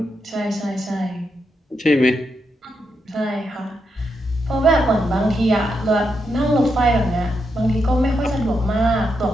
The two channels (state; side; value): normal; both; correlation 0.83